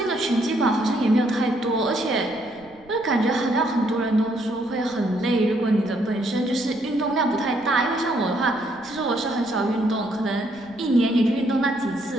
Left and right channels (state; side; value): noise; right; rumble, 27 dB below the sound